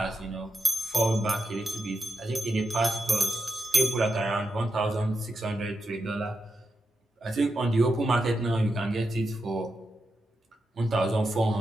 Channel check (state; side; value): normal; both; correlation 0.87